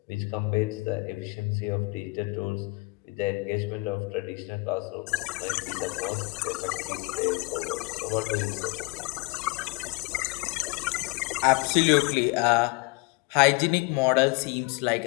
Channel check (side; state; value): right; quieter; 26.7 dB